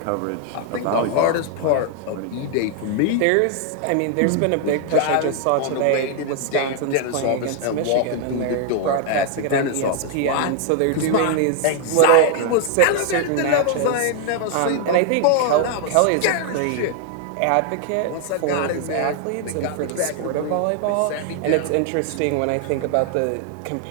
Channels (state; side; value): different; both; correlation 0.00